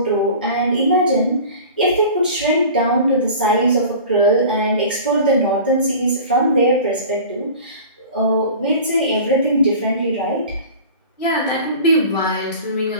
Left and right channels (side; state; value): both; inverted; correlation -0.39